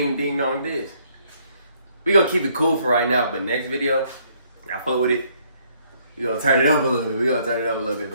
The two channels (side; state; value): both; inverted; correlation -0.67